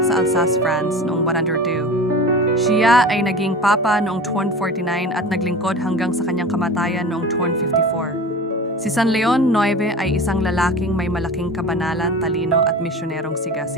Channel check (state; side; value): normal; both; correlation 0.35